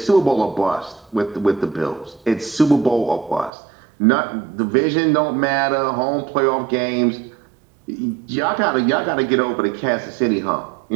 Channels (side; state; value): left; drops out; at 3.5 s